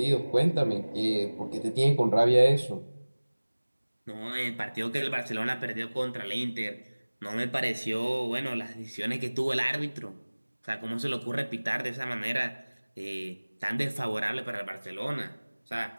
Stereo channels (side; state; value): both; inverted; correlation -1.00